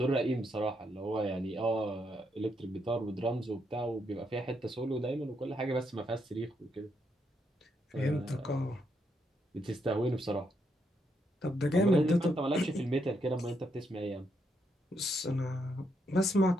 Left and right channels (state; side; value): normal; both; correlation 0.78